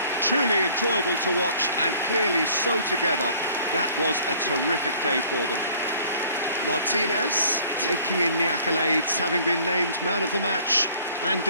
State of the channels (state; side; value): inverted; both; correlation -0.54